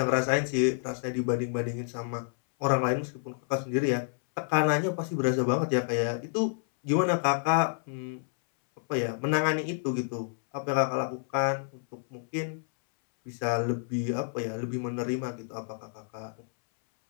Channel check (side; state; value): right; silent; 58 dB below the other